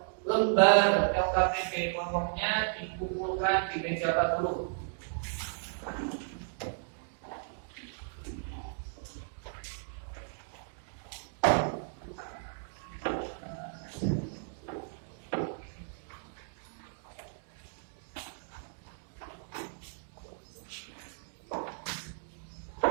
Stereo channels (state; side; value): silent; left; digital silence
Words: lembar LKPD kelompoknya dikumpulkan di meja Pak Guru.